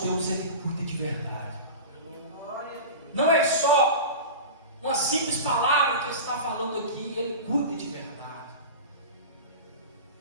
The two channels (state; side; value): inverted; both; correlation -0.30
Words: Deus, Ele cuida de verdade. Não é só uma simples palavra que Ele está falando aqui, Ele cuida de verdade.